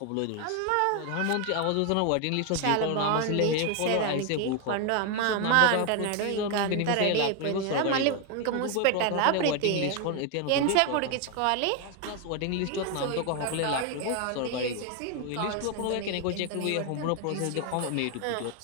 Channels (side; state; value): both; different; correlation 0.01